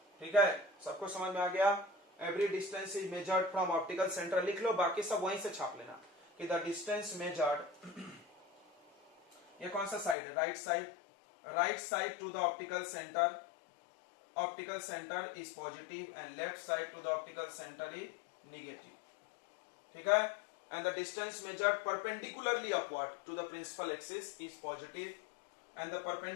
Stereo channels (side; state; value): right; drops out; at 10.2 s